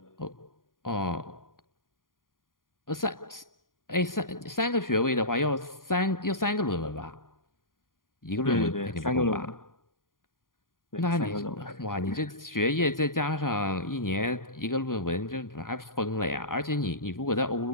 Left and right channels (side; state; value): right; late; 0.90 ms